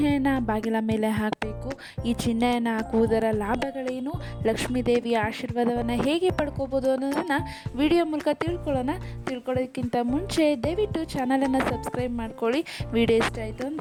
ಬಾಗಿಲ ಮೇಲೆ ಹಾಕಬೇಕು, ಈ ಚಿಹ್ನೆಯನ್ನು ಹಾಕುವುದರ ಲಾಭಗಳೇನು, ಲಕ್ಷ್ಮೀ ದೇವಿಯ ಆಶೀರ್ವಾದವನ್ನು ಹೇಗೆ ಪಡ್ಕೋಬೋದು ಅನ್ನೋದನ್ನು ವಿಡಿಯೋ ಮೂಲಕ ತಿಳ್ಕೊಳ್ಳೋದಕ್ಕಿಂತ ಮುಂಚೆ ದಯವಿಟ್ಟು ಚಾನಲನ್ನು ಸಬ್ಸ್ಕ್ರೈಬ್ ಮಾಡ್ಕೊಳ್ಳಿ. ವಿಡಿಯೋ ಇಷ್ಟ ಆಯಿತು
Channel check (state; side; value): identical; both; correlation 1.00